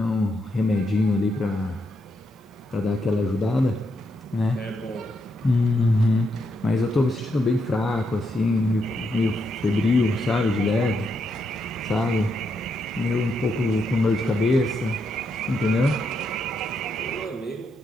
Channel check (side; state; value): both; normal; correlation 0.80